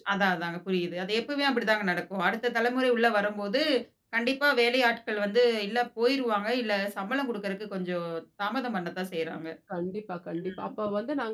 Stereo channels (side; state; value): both; identical; correlation 1.00